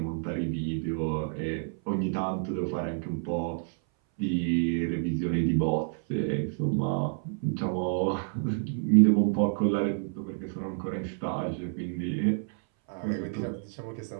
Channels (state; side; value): silent; left; 59 dB below the other